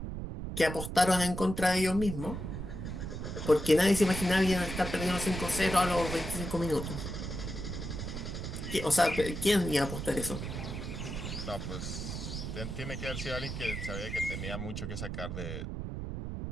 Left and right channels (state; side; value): noise; right; rumble, 5 dB below the sound